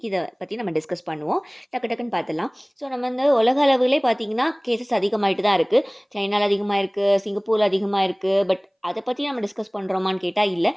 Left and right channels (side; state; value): both; identical; correlation 1.00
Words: இதை பற்றி நம்ம டிஸ்கஸ் பண்ணுவோம். டக்கு டக்குன்னு பார்த்துடலாம். ஸோ நம்ம உலக அளவிலே பார்த்திங்கன்னா கேசஸ் அதிகமாகிட்டு தான் இருக்குது. சைனாவில் அதிகமாக இருக்குது, சிங்கப்பூரில் அதிகமாக இருக்குது. பட் அதை பற்றி நம்ம டிஸ்கஸ் பண்ணுறோமான்னு கேட்டால் இல்லை.